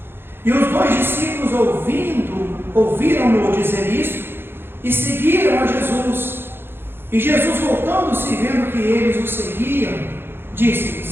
E os dois discípulos, ouviram-no dizer isto, e seguiram a Jesus. E Jesus, voltando-se e vendo que eles o seguiam,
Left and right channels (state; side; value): late; left; 0.11 ms